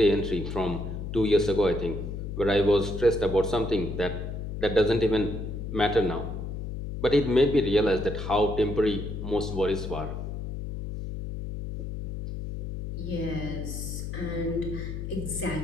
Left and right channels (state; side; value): noise; left; hum, 6 dB below the sound